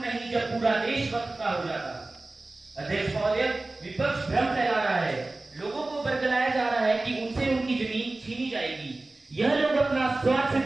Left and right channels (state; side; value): quieter; left; 3.0 dB